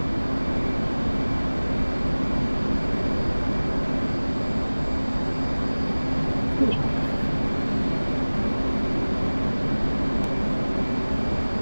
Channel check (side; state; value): both; inverted; correlation -1.00